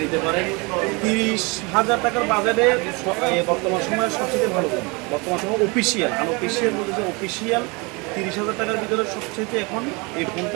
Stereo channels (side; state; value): left; quieter; 28.0 dB